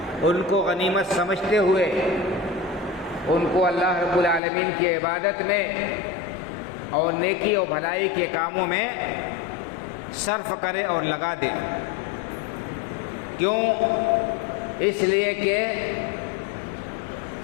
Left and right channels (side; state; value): right; drops out; at 4.4 s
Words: ان کو غنیمت سمجھتے ہوئے ان کو اللہ رب العالمین کی عبادت میں اور نیکی اور بھلائی کے کاموں میں صرف کرے اور لگا دے۔ کیوں؟ اس لیے کہ